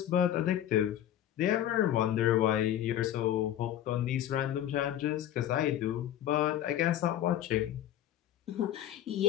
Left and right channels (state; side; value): quieter; right; 11.6 dB